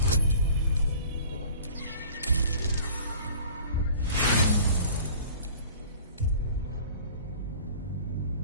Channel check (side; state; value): both; inverted; correlation -0.46